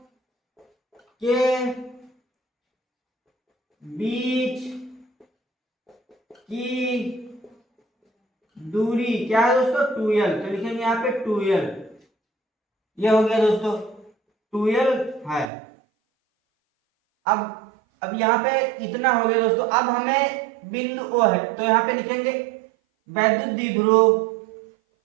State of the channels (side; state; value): left; drops out; at 15.5 s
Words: के बीच की दूरी क्या है दोस्तों? 2l। तो लिखेंगे यहाँ पे 2l। ये हो गया दोस्तों, 2l है। अब यहाँ पे इतना हो गया दोस्तों। अब हमें बिंदु O है, तो यहाँ पे लिखेंगे वैद्युत द्विध्रुव।